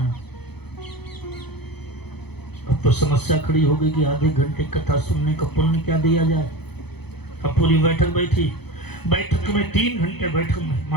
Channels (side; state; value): right; late; 0.98 ms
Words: अब तो समस्या खड़ी हो गई कि आधे घंटे कथा सुनने का पुण्य क्या दिया जाए। अब पूरी बैठक बैठी, बैठक में 3 घंटे बैठक में